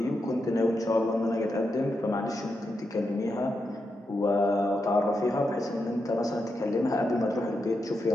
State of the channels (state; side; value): normal; both; correlation 0.85